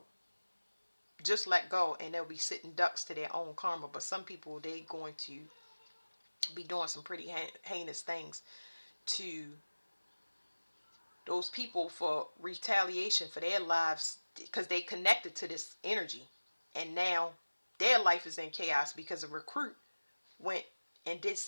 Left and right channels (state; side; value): inverted; both; correlation -1.00